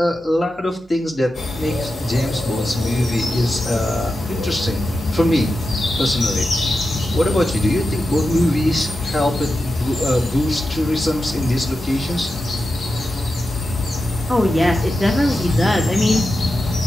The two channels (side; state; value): both; normal; correlation 0.90